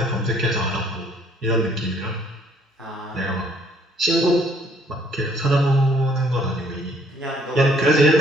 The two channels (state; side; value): normal; both; correlation 0.62